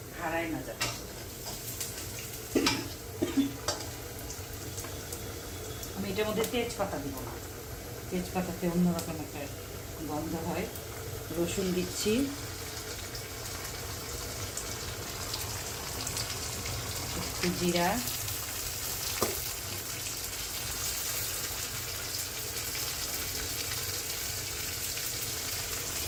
হারায় না যাবে। আমি এটার মধ্যে তেজপাতা দিব না, তেজপাতাতে অন্যরকম একটা গন্ধ হয়। রসুন দিচ্ছি, একটু জিরা,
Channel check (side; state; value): both; identical; correlation 1.00